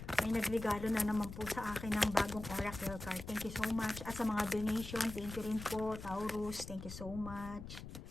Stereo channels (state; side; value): noise; left; rumble, 11 dB below the sound